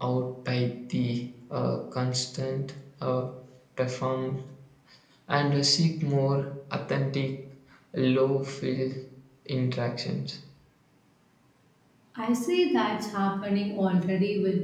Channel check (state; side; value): identical; both; correlation 1.00